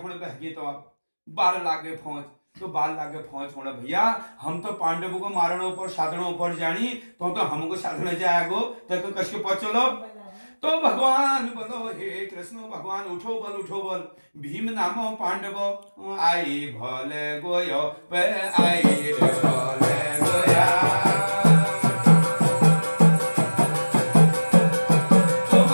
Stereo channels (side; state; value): both; inverted; correlation -1.00